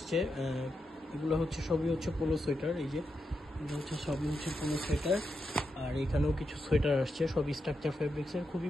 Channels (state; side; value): normal; both; correlation 0.86